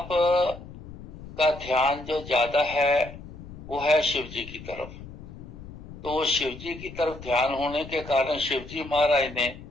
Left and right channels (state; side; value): noise; left; rumble, 14 dB below the sound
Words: का ध्यान जो ज्यादा है वो है शिव जी की तरफ। तो शिव जी की तरफ ध्यान होने के कारण शिव जी महाराज ने